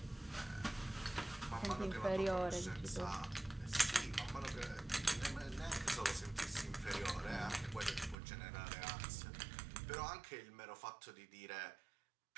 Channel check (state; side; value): drops out; left; at 8.2 s